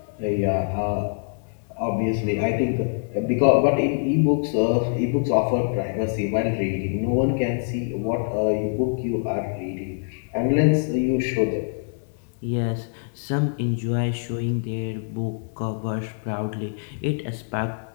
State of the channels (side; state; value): right; silent; digital silence